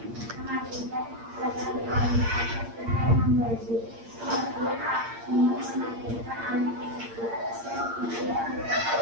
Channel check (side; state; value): left; late; 8.7 ms